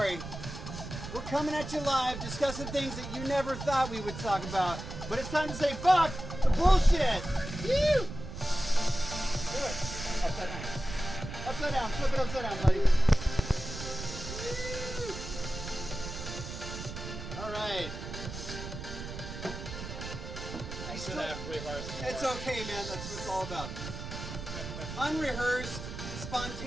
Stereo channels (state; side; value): noise; right; rumble, 9 dB below the sound